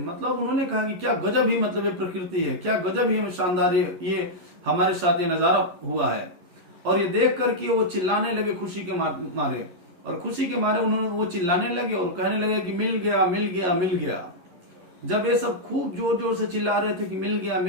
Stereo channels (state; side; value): late; left; 11 ms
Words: मतलब उन्होंने कहा कि क्या गजब ही, मतलब ये प्रकृति है, क्या गजब ही शानदार ये हमारे साथ ये नजारा हुआ है। और ये देख करके वो चिल्लाने लगे खुशी के मारे, और खुशी के मारे उन्होंने वो चिल्लाने लगे और कहने लगे कि मिल गया मिल गया मिल गया। जब ये सब खूब जोर जोर से चिल्ला रहे थे कि मिल